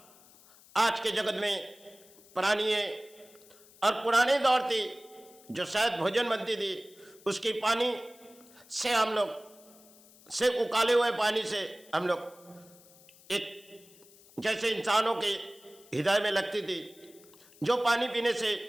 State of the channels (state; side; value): noise; left; hiss, 25 dB below the sound